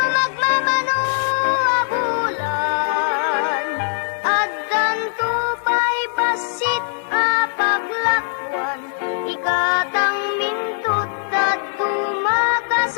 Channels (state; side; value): silent; right; 65 dB below the other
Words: abulan. Addan tupay basit apaglakwan ikatang mintot at tumaka